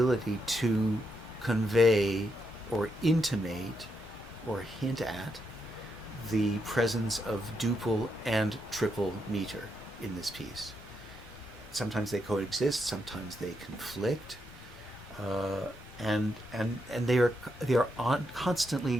to convey or intimate or hint at the presence of duple and triple meter in this piece. Sometimes they coexist, sometimes they conflict, and they are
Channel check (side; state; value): both; normal; correlation 0.81